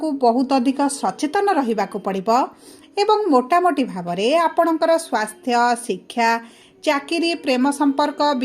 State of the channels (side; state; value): both; identical; correlation 1.00